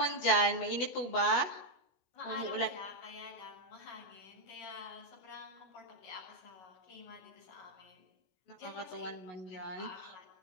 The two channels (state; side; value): late; right; 16 ms